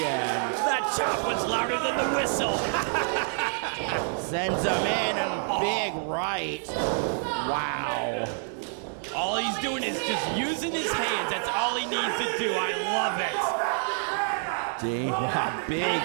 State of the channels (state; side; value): silent; left; 57 dB below the other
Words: in. That chop was louder than the whistle. Sends him in and big right. Wow. All he's doing is just using his hands. That's all he needs to do. I love it. Big